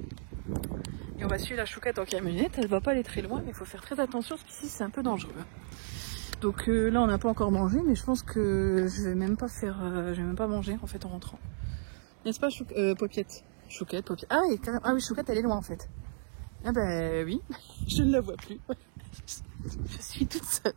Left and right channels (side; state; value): left; silent; digital silence